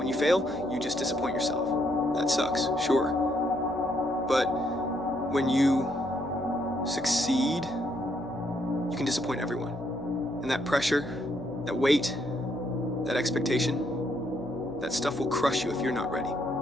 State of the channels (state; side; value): noise; left; hum, 22 dB below the sound